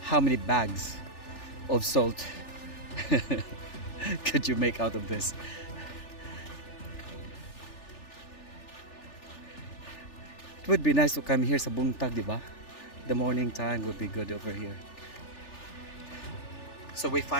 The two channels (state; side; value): late; right; 3.4 ms